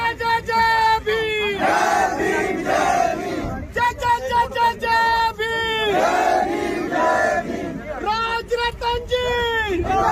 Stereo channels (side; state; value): both; identical; correlation 1.00